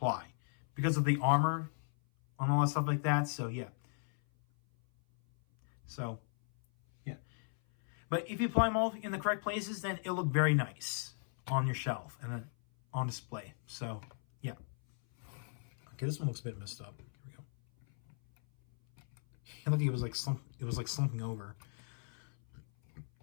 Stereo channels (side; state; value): right; silent; 53 dB below the other